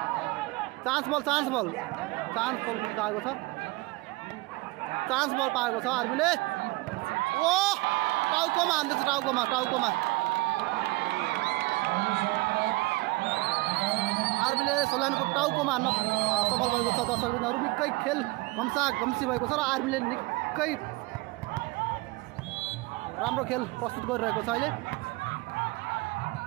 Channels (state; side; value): quieter; left; 22.9 dB